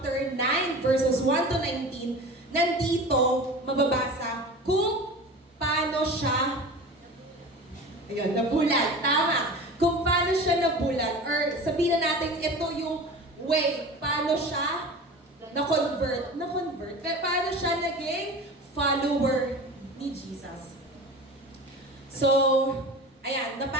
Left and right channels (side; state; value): both; normal; correlation 0.35